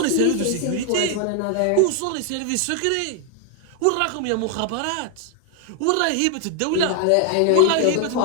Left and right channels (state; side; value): different; both; correlation 0.00